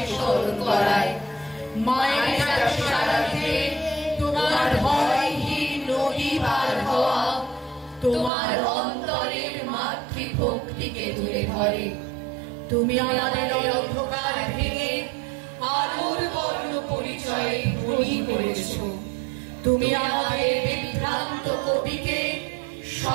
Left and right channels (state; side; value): drops out; left; at 8.3 s